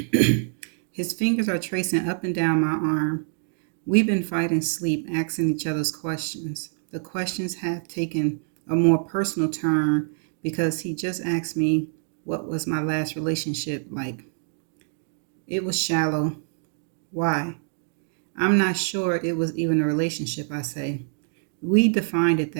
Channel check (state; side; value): silent; left; 61 dB below the other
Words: fingers are tracing up and down my arm. We've been fighting sleep, asking each other's questions. The questions have taken a more personal turn because he just asked me what was my last relationship like. It was shallow. Why? I'm not sure it was even a relationship, I say. We defined it